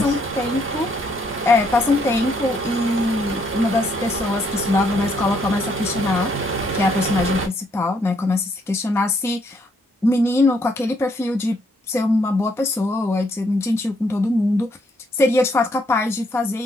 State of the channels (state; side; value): normal; both; correlation 0.71